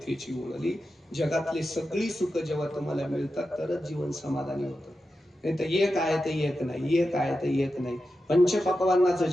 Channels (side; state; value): both; normal; correlation 0.90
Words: ओळली. जगातली सगळी सुख जेव्हा तुम्हाला मिळतात तरच जीवन समाधानी होतं. नाही तर एक आहे तर एक नाही, एक आहे तर एक नाही. पंचपक्वान्नाचं